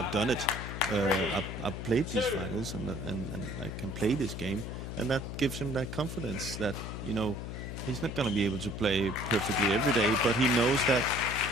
done it. I've played these finals and I can play this game, and that gives him that confidence that, you know, he's not going to be able to play perfectly every day, but he knows that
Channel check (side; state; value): left; noise; hum, 7 dB below the sound